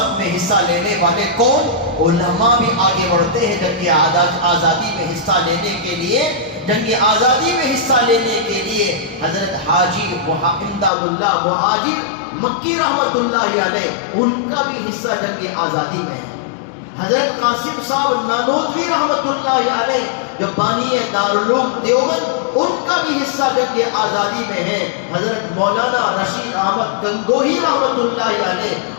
میں حصہ لینے والے کون؟ علماء بھی آگے بڑھتے ہیں جنگ آزادی میں حصہ لینے کے لیے۔ جنگ آزادی میں حصہ لینے کے لیے حضرت حاجی امداد اللہ مہاجر مکی رحمت اللہ علیہ، ان کا بھی حصہ جنگ آزادی میں ہے۔ حضرت قاسم صاحب نانوتوی رحمت اللہ علیہ جو بانی دارالعلوم دیوبند، ان کا بھی حصہ جنگ آزادی میں ہے۔ حضرت مولانا رشید احمد گنگوہی رحمت اللہ علیہ،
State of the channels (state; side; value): drops out; right; at 10.9 s